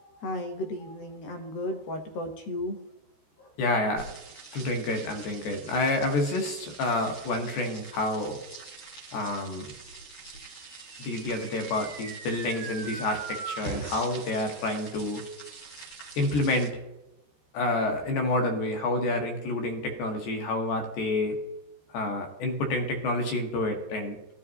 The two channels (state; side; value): late; right; 13 ms